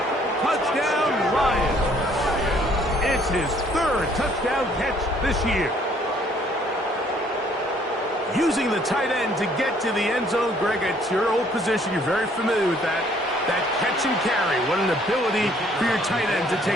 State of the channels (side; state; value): both; normal; correlation 0.62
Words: touchdown Lions. It's his 3rd touchdown catch this year. Using the tight end to get to the end zone, Greg, it's your old position. You're very familiar with that. That catch and carry. What an ability for your tight end to